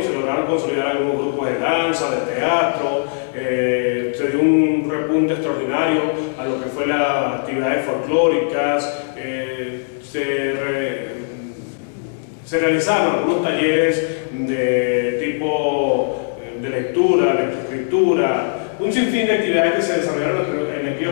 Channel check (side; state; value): right; silent; 66 dB below the other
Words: se lograron consolidar algunos grupos de danza, de teatro, se dio un repunte extraordinario a lo que fue las actividades folclóricas, se realizaron algunos talleres de tipo de lectura, lectoescritura, un sinfín de actividades que se desarrollaron en